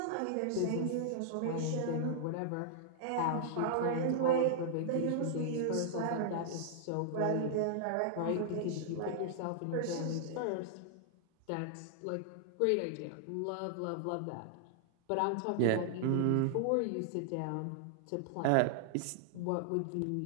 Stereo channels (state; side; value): different; both; correlation -0.01